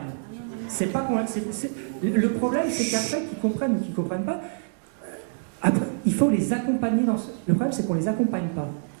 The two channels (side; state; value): left; silent; digital silence